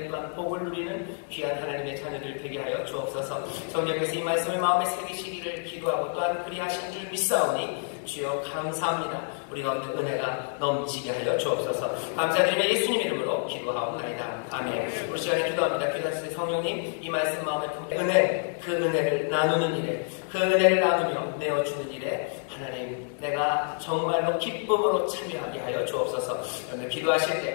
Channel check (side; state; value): right; silent; 59 dB below the other